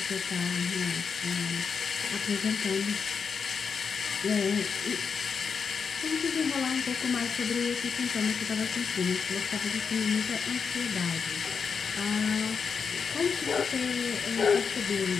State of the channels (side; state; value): right; quieter; 5.9 dB